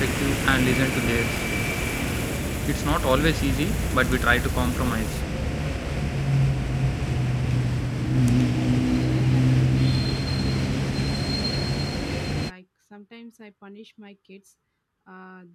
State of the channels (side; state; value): both; identical; correlation 1.00